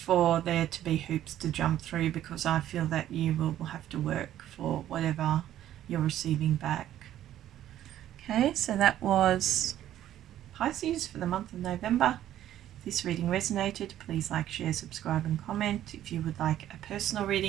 there to be hoops to jump through, because I feel that you will have to work for whatever you're receiving back. Okay, so that was Pisces for the month of November. If this reading resonated, please like, share, subscribe and comment. If you would like a personal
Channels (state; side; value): quieter; left; 12.2 dB